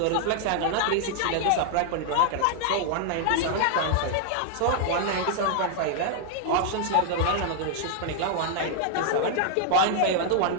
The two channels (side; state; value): both; different; correlation 0.00